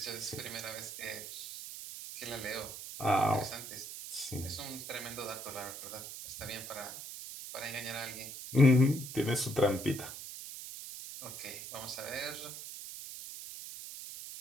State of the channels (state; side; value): noise; right; hiss, 9 dB below the sound